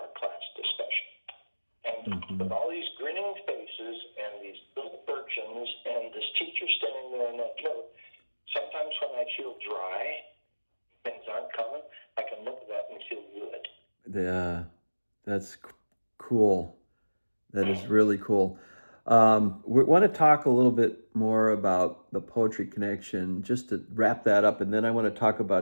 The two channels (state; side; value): inverted; both; correlation -1.00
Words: our class discussion. And with all these grinning faces and these little urchins and this teacher standing there on that note, sometimes when I feel dry, things aren't coming, I can look at that and feel good. That's cool. That is really cool. We want to talk a little bit more about the Poetry Connection, just to wrap that up, and then I want to talk